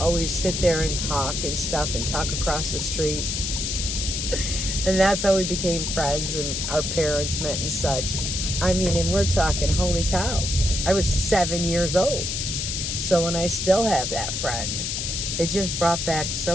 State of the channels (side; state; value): left; noise; hiss, 2 dB below the sound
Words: sit there and talk and stuff and talk across the street. And that's how we became friends, and our parents met and such. I mean, and we're talking, holy cow. I was 7 years old. So when I still have that friend, it just brought back